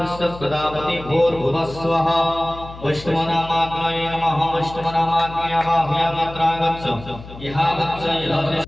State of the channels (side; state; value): left; noise; hum, 15 dB below the sound